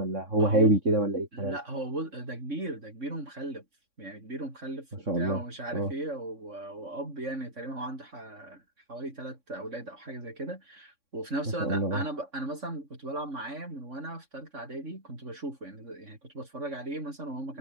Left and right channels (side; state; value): left; late; 3.6 ms